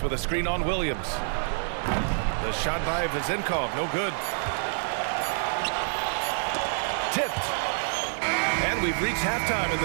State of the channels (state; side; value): silent; left; digital silence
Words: with a screen on Williams. The shot by Vezenkov, no good. Tipped. And we've reached halftime in